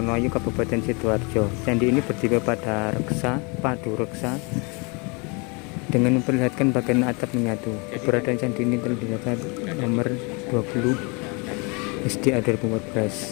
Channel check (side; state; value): right; quieter; 31.1 dB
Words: Kabupaten Sidoarjo. Candi ini berdiri pada padu reksa dengan memperlihatkan bagian atap menyatu. Keberadaan candi ini telah dinyatakan nomor 20 SDA